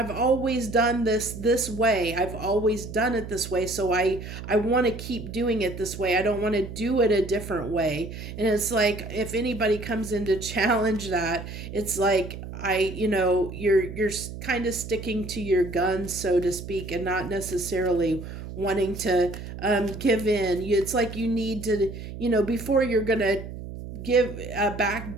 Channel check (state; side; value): noise; right; hum, 10 dB below the sound